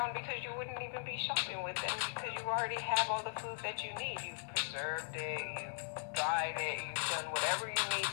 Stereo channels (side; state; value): right; silent; 52 dB below the other